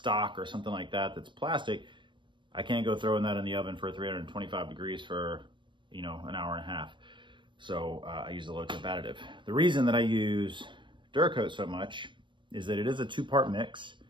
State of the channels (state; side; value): late; left; 0.23 ms